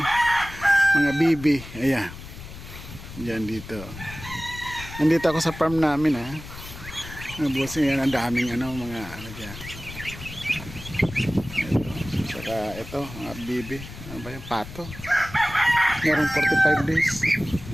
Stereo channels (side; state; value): left; noise; rumble, 13 dB below the sound